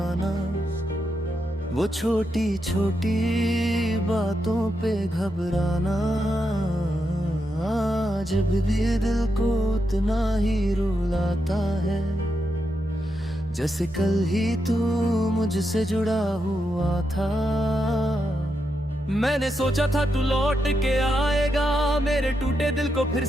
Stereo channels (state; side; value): noise; right; hum, 22 dB below the sound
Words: वो छोटी छोटी बातों पे घबराना, जब भी दिल को उतना ही रुलाता है, जैसे कल ही तू मुझसे जुड़ा हुआ था। मैंने सोचा था तू लौट के आएगा, मेरे टूटे दिल को फिर